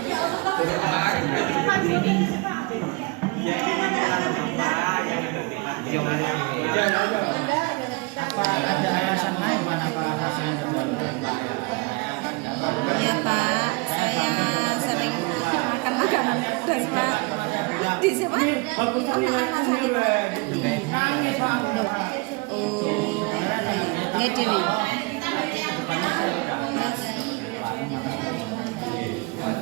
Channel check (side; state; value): left; quieter; 27.4 dB